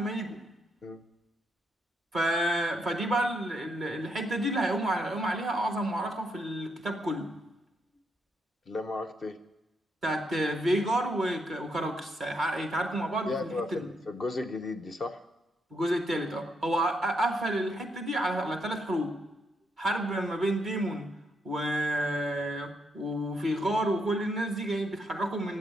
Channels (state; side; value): normal; both; correlation 0.77